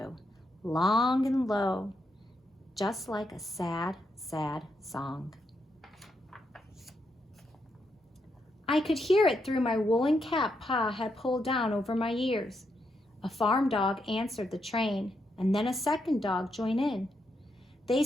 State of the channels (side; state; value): both; normal; correlation 0.81